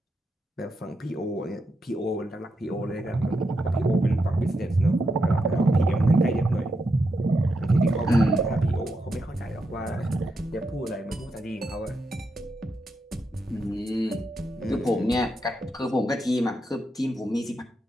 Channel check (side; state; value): both; normal; correlation 0.84